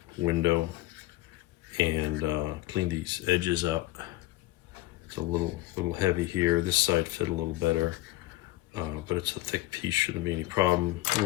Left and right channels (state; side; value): quieter; right; 17.7 dB